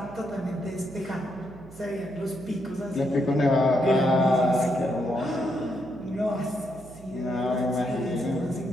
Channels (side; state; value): right; noise; hum, 19 dB below the sound